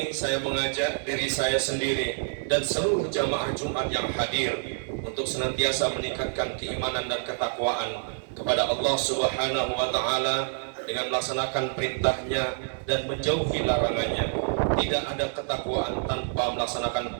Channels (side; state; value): left; silent; digital silence